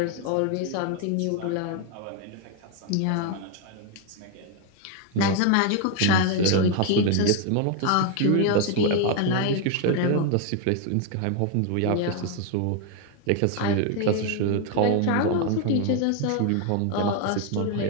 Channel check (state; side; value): different; both; correlation 0.01